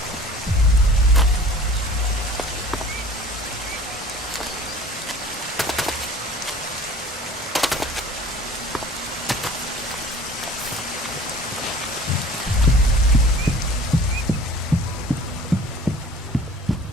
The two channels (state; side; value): normal; both; correlation 0.45